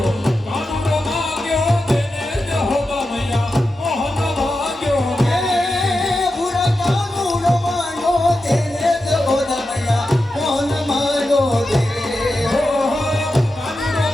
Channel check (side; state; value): both; normal; correlation 0.90